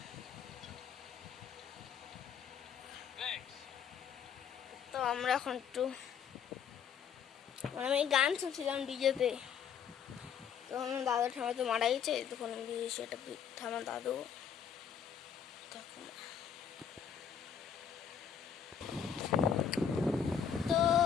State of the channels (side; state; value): right; quieter; 7.8 dB